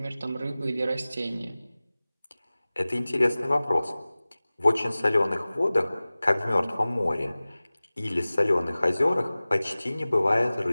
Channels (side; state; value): both; inverted; correlation -0.98